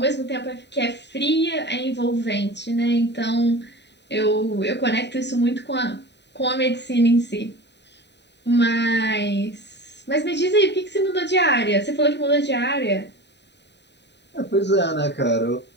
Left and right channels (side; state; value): right; late; 0.50 ms